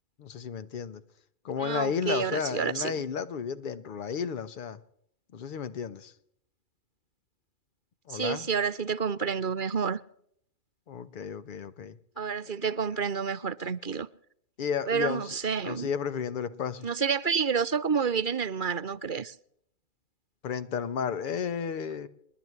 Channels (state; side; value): late; right; 2.4 ms